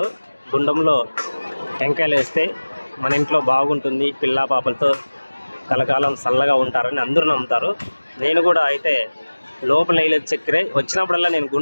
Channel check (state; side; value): inverted; both; correlation -1.00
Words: గుండంలో టెంకాయలు వేస్తే మన ఇంట్లో బాగుంటుంది, పిల్లా పాపలతో కలకాలం చల్లగా ఉంటారని అందరూ నమ్ముతారు. నేను కూడా అయితే లోపల వేయలేదు చక్కెర. వచ్చినప్పుడల్లా నేను